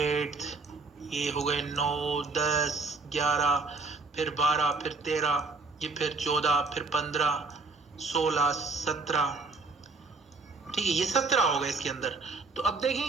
ये हो गए 9, 10, 11, फिर 12, फिर 13, ये फिर 14, फिर 15, 16, 17, ठीक है, ये 17 हो गए इसके अंदर। तो अब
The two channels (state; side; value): quieter; left; 3.8 dB